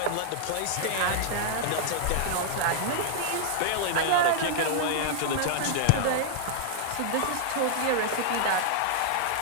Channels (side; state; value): both; different; correlation -0.01